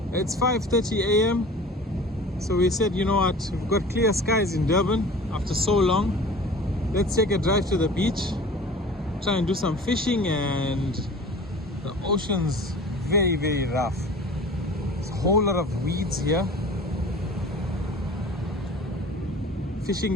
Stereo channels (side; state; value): both; normal; correlation 0.41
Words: It's 5:30 a.m. So we said, you know what, we've got clear skies in Durban after so long. Let's take a drive to the beach, try and do some fishing, and the ocean's very rough. There's a whole lot of weeds here. Fishing